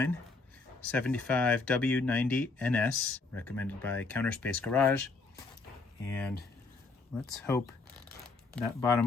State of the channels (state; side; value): quieter; right; 3.9 dB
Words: 75W90NS, recommended by Counterspace Garage. And let's hope that